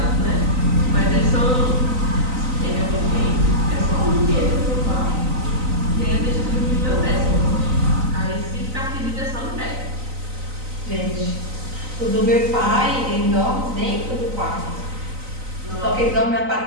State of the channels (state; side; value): late; left; 3.9 ms